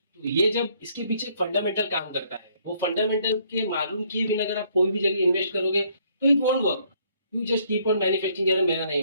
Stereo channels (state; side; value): inverted; both; correlation -0.66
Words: तो ये जब इसके पीछे फंडामेंटल काम करता है, वो फंडामेंटल के मालूम किए बिना अगर आप कोई भी जगह इन्वेस्ट करोगे तो it won't work. You just keep on manufacturing, यार मेरा नहीं